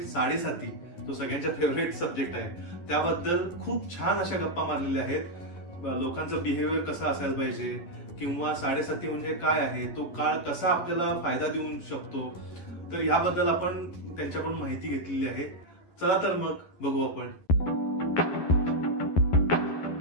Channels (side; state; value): right; late; 11 ms